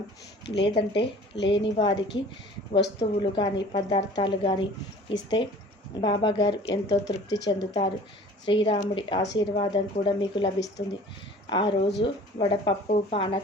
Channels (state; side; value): normal; both; correlation 0.47